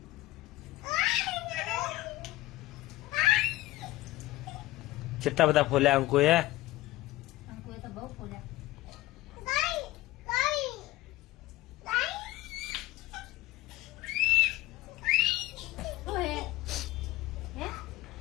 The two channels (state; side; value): quieter; right; 17.9 dB